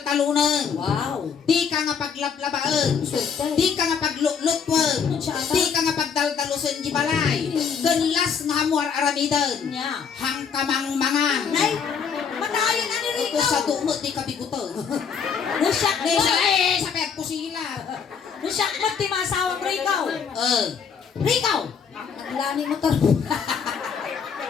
Wow. Di ka nga paglaplabaan. Swerte. Di ka nga paglulutwan. Di ka nga pagdaldalusan di balay. Ganlas nga hamuar aramidan. Nya. Hang kamang mangan. Nay, matayin na ni Rico. Ito sa dumot di ka biguto. Nusak mo. Sa pek ko sila. Nusak mo ti masawang Rico. Rico. Naglani mo to.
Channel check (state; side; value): quieter; right; 6.5 dB